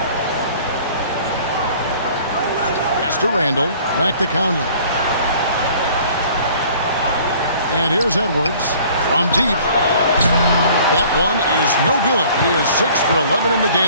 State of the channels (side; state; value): both; inverted; correlation -0.52